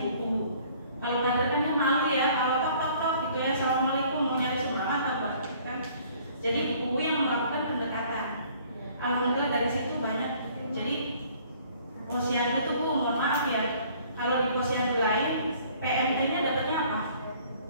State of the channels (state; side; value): inverted; both; correlation -0.56